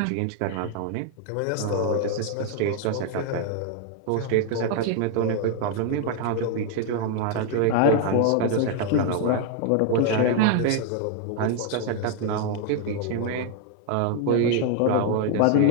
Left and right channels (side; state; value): both; different; correlation 0.00